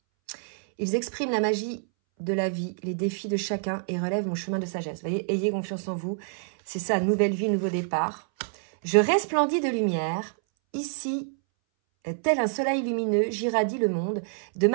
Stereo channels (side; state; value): left; silent; 60 dB below the other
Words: Ils expriment la magie de la vie, les défis de chacun et relèvent mon chemin de sagesse. Vous voyez, ayez confiance en vous. C'est ça, nouvelle vie, nouveau départ. Je resplendis de lumière. Ici, tel un soleil lumineux, j'irradie le monde. De